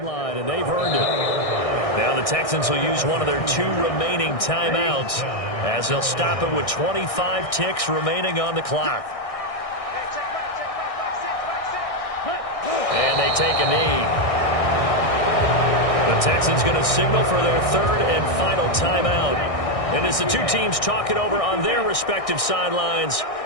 and they've earned it. Now the Texans will use one of their 2 remaining timeouts, as they'll stop it with 25 ticks remaining on the clock. And they take a knee. The Texans going to signal for their 3rd and final timeout. And as the 2 teams talk it over on their respective sidelines,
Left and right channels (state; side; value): late; right; 1.6 ms